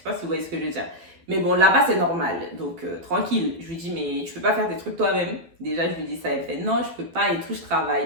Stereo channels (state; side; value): late; left; 12 ms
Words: pas si vous voyez ce que je veux dire. Mais bon, là-bas, c'est normal. Donc, tranquille. Je lui dis, mais tu peux pas faire des trucs toi-même. Déjà, je lui dis ça. Elle fait, non, je peux pas et tout, je